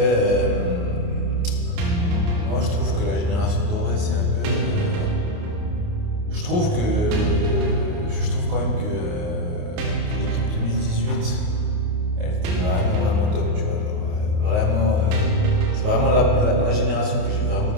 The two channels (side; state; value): left; late; 28 ms